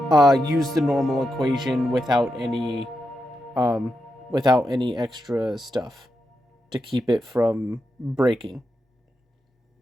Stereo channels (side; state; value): both; normal; correlation 0.86